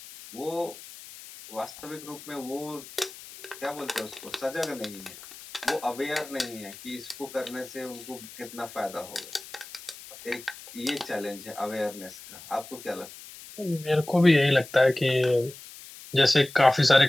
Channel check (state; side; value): noise; left; hiss, 16 dB below the sound